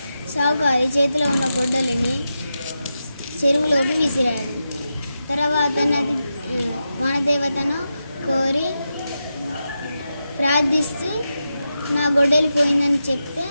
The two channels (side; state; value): both; inverted; correlation -0.89